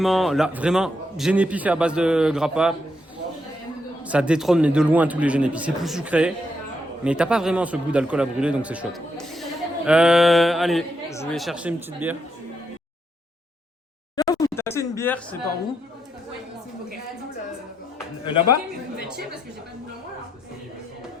Genepi fait à base de grappa. Ça détrône mais de loin tous les Genepi. C'est plus sucré, mais t'as pas vraiment ce goût d'alcool à brûler, donc c'est chouette. Allez, je vais chercher une petite bière. Vous taxez une bière, c'est par où? Là-bas?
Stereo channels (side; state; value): both; normal; correlation 0.80